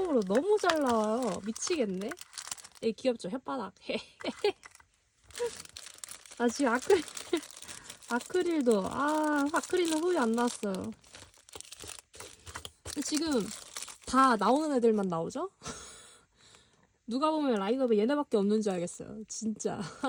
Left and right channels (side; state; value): both; identical; correlation 1.00